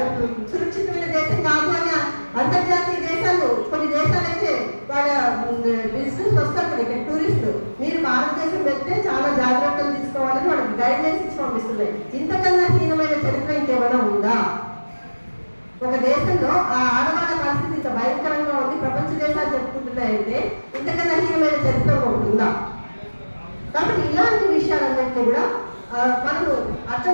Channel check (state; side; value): inverted; both; correlation -1.00